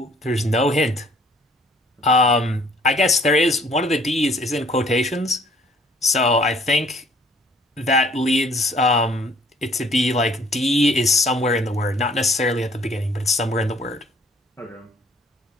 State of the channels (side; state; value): both; normal; correlation 0.58